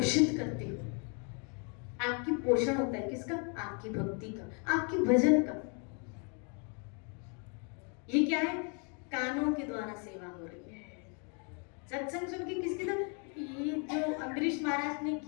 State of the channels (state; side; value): quieter; right; 37.9 dB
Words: करते हो। आपकी पोषण होता है किसका? आपकी भक्ति का, आपकी भजन का। ये क्या है? कानों के द्वारा सेवा हो रही है। सत्संग सुन के किसकी तरह? ये जो अम्बरीश महाराज ने